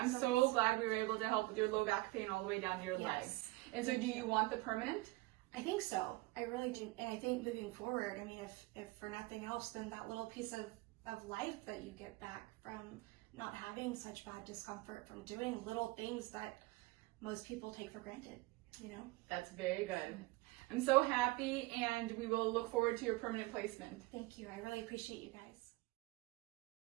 so glad we were able to help with your low back pain all the way down to your legs. And so do you want the permanent? I think so. I really do. And I think moving forward, I mean, if for nothing else, then that little piece of life that you get back from not having such bad discomfort, from doing little things that most people take for granted, you know? That's very good. I'm so happy, and we will look forward to your permanent placement. Thank you. I really appreciate you guys.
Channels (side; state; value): left; quieter; 21.5 dB